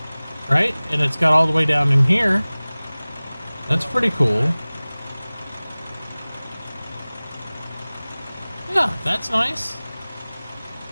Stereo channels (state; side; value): inverted; both; correlation -0.99